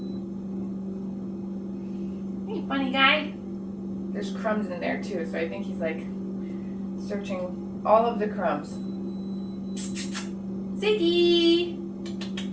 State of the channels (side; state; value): both; identical; correlation 1.00